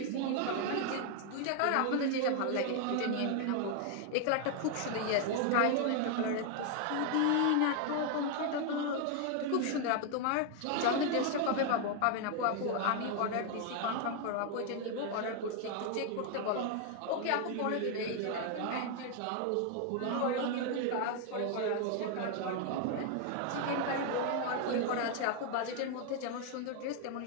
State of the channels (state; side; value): different; both; correlation 0.00